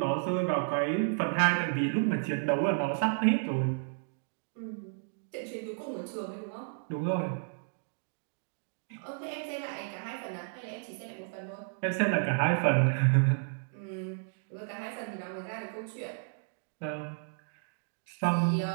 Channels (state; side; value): silent; left; digital silence